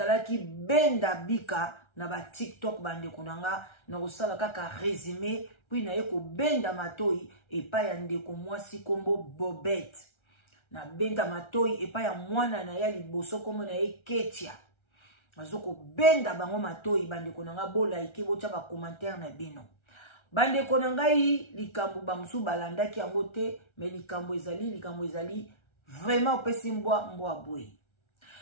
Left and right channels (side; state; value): right; late; 1.3 ms